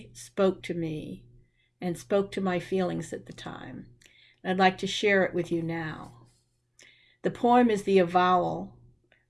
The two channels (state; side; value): identical; both; correlation 1.00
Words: spoke to me and spoke to my feelings at the time. I'd like to share it with you now. The poem is The Avowal